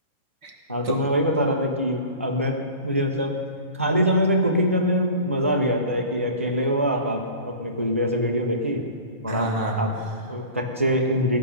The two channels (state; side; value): inverted; both; correlation -0.39